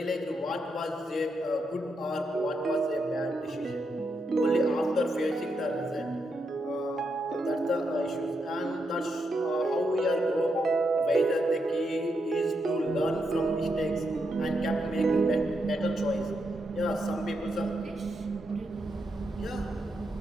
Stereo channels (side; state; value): both; normal; correlation 0.82